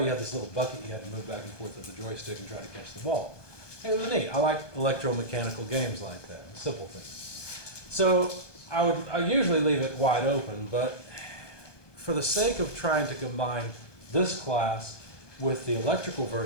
you had this little bucket you had to move back and forth with the joystick and try to catch the ball. And it was neat. I like electromechanical games like that, simple things. So I usually leave it wide open, but for the sake of trying to combine this class with the electrical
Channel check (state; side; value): late; right; 1.2 ms